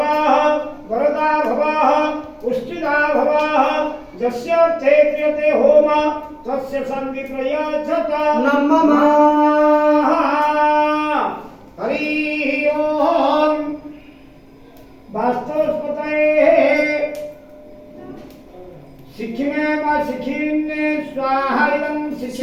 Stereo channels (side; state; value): both; identical; correlation 1.00